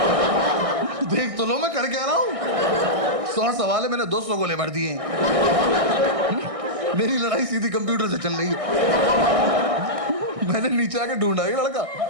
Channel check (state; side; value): late; left; 1.6 ms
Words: देख तो लो मैं कर क्या रहा हूँ। 100 सवाल है, मैंने 200 गोले भर दिए। मेरी लड़ाई सीधी कंप्यूटर से चल रही है। मैंने नीचे आके ढूंढा ये लड़का।